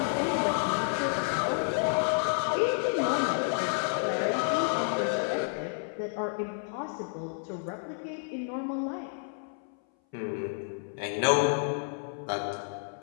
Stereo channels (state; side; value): silent; right; 58 dB below the other